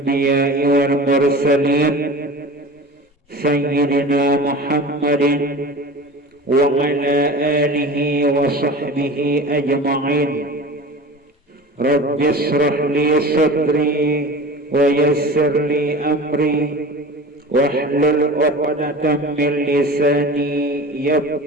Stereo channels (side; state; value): both; normal; correlation 0.35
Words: والمرسلين سيدنا محمد وعلى آله وصحبه أجمعين. رب اشرح لي صدري ويسر لي أمري واحلل عقدة من لساني